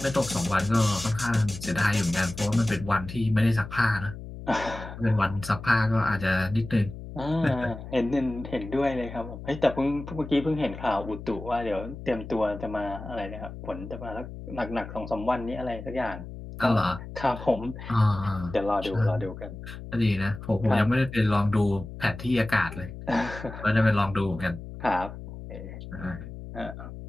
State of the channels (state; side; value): noise; left; hum, 11 dB below the sound